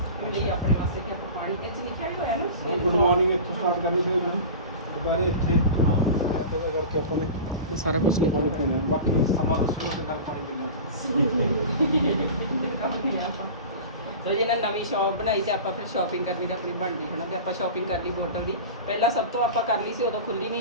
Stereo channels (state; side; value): inverted; both; correlation -0.33